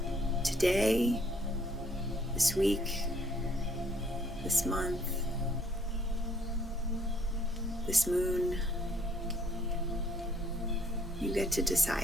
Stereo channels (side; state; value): both; normal; correlation 0.64